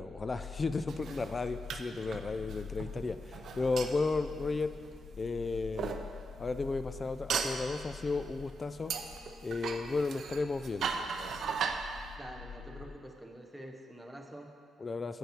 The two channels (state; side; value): normal; both; correlation 0.85